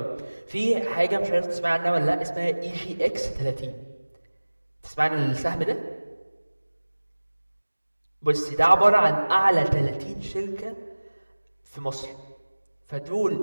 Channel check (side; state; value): both; inverted; correlation -1.00